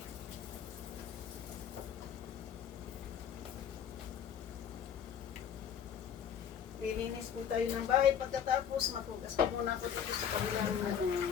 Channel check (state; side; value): quieter; right; 8.4 dB